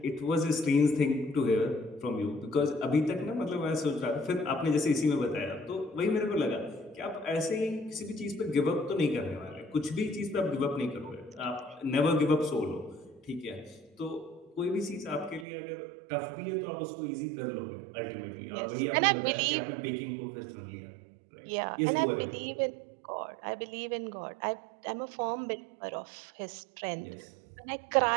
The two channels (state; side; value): drops out; left; at 15.5 s